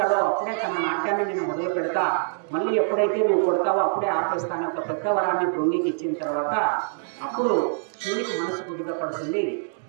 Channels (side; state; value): left; silent; digital silence